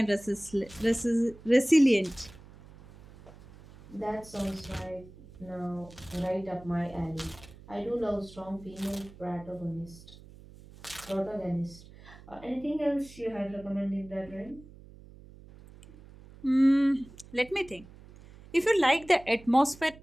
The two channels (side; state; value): right; noise; hum, 20 dB below the sound